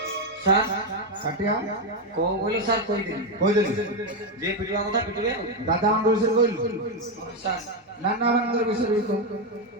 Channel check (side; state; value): both; normal; correlation 0.07